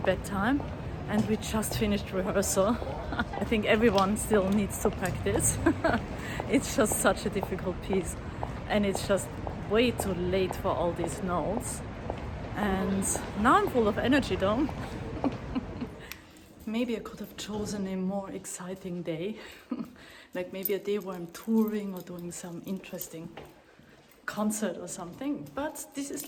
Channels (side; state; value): both; identical; correlation 1.00